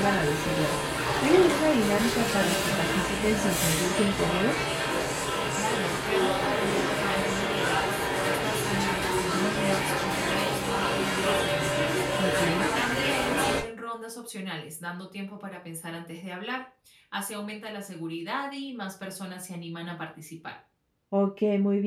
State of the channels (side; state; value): both; identical; correlation 1.00